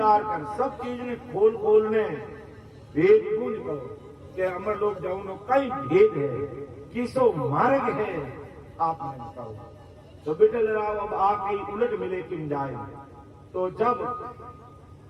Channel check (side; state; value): both; identical; correlation 1.00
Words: कर सब चीज ने खोल खोल ने भेद को निकलो कि अमर लोक जाऊं कई भेद है, किसो मार्ग है आपने बताओ। तो बिठल राव अब आके उलट मिले किन जाए। तो जब